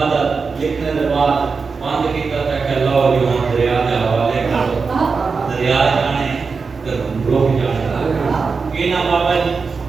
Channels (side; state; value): left; quieter; 4.9 dB